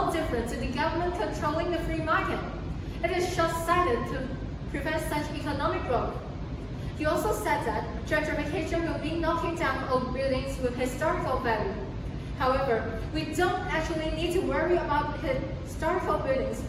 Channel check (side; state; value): both; identical; correlation 1.00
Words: different to the government controlling the free market. It is short-sighted to prevent such economic growth. He also said that gentrification will be knocking down old buildings with historical value. However, we don't actually need to worry about historical buildings